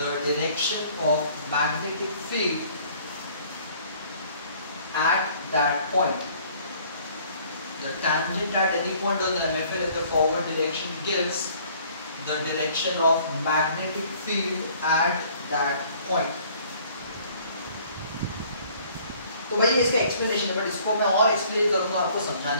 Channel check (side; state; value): both; inverted; correlation -0.57